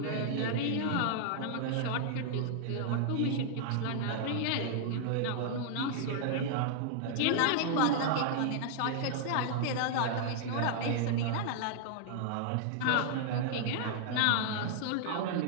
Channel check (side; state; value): both; different; correlation -0.01